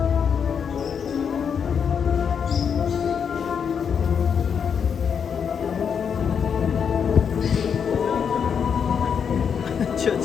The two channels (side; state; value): right; quieter; 7.1 dB